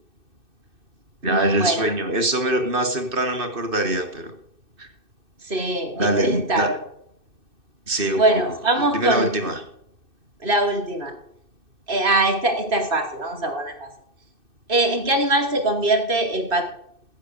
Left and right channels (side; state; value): left; late; 2.6 ms